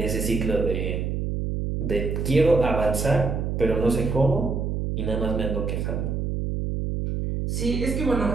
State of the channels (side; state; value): right; noise; hum, 1 dB below the sound